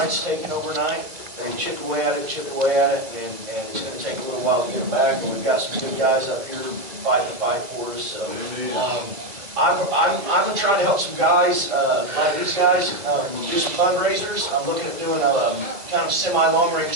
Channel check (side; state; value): left; late; 2.2 ms